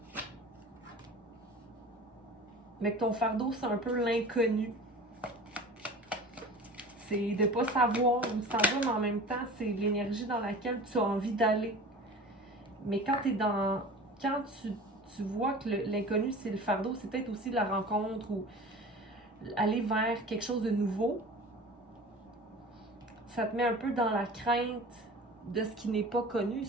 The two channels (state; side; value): normal; both; correlation 0.38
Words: Mais que ton fardeau, c'est un peu l'inconnu. C'est de ne pas savoir où ça va, mais en même temps, c'est l'énergie dans laquelle tu as envie d'aller. Mais quand tu vois que l'inconnu, c'est le fardeau, c'est peut-être aussi la rencontre ou aller vers quelque chose de nouveau. Ça te met un peu dans la crainte de ce qui n'est pas connu,